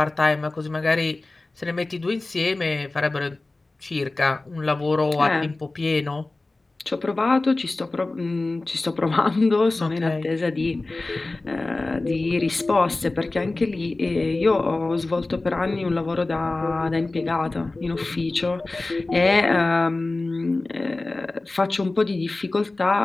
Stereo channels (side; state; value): right; quieter; 3.1 dB